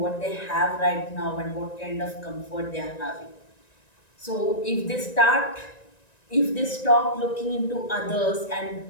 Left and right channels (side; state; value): right; late; 1.9 ms